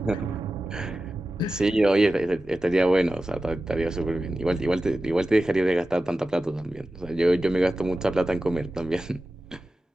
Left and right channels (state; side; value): normal; both; correlation 0.94